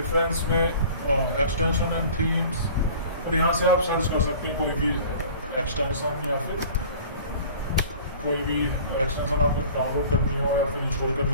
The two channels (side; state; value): both; inverted; correlation -0.45